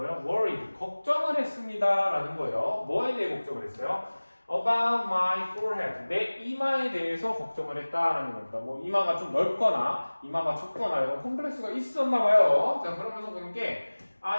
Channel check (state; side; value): inverted; both; correlation -1.00